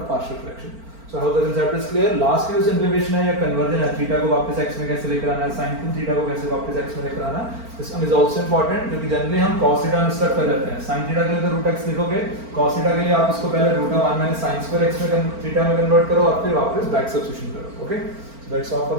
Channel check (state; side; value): late; left; 4.4 ms